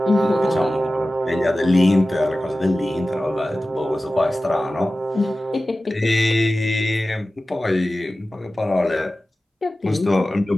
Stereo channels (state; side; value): normal; both; correlation 0.95